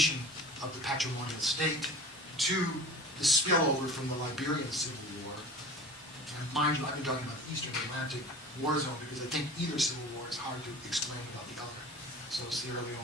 of the patrimonial state. 2, the spillover from the Liberian Civil War. And mind you, I've been talking about the Eastern Atlantic war zone because I think either civil war is hard to explain about the other. So Sierra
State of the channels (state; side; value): normal; both; correlation 0.39